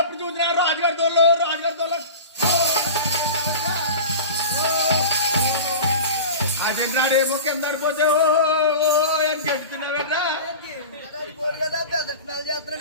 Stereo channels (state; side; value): inverted; both; correlation -0.33